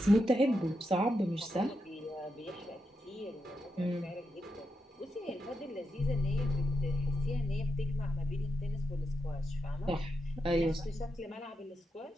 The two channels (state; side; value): normal; both; correlation 0.86